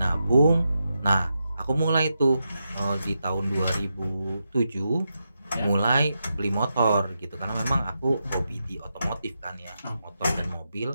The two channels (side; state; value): both; inverted; correlation -0.86